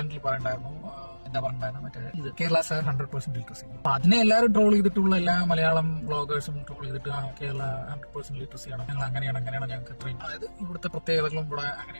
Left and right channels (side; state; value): both; inverted; correlation -1.00